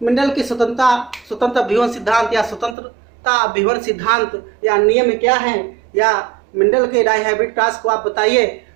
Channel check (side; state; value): left; drops out; at 2.8 s